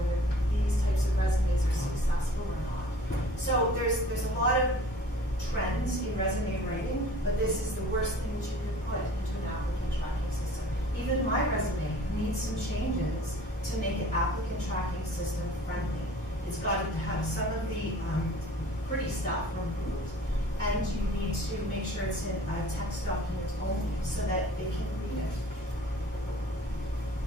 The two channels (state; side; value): normal; both; correlation 0.48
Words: these types of resumes are successful or not. So there's a lot of trends in resume writing, but this is the worst thing that you could put into an applicant tracking system. Even my resume needs some changes to make it applicant tracking system friendly. It's got to have some of the pretty stuff removed, and you need to make sure it's in a text document only so that it can read it.